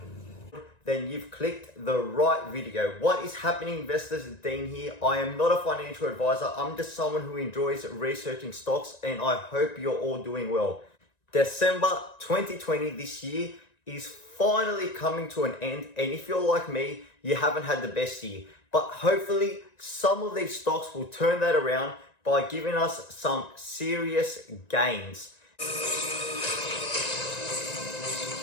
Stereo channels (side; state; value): right; late; 1.9 ms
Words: then you've clicked the right video. What is happening, investors? Dean here. I am not a financial advisor. I'm just someone who enjoys researching stocks, and I hope you're all doing well. December 2020 this year is finally coming to an end, and if you're like me, you haven't had the best year. But hopefully some of these stocks will turn that around by giving us some serious gains.